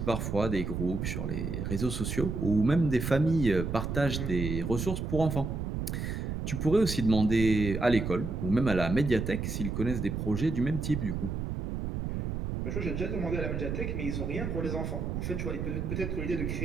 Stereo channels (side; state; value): right; noise; rumble, 3 dB below the sound